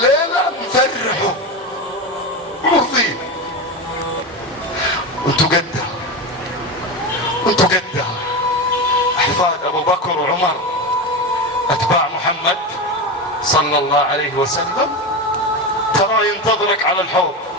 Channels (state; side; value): normal; both; correlation 0.19